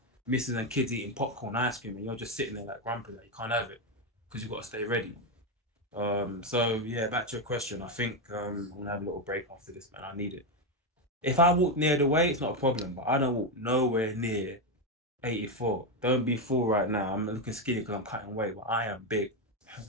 missus and kids eating popcorn, ice cream, and you're just sitting there like grumpy, like you can't have it because you've got to stay ready. So yeah, back to your question. I think I'm gonna have a little break after this, man. I need it. If I walk near the weight, it's not a problem, but I don't walk nowhere near 84. Don't be fooled right now. I'm looking skinny because I'm cutting weight, but I am big.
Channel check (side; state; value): both; normal; correlation 0.08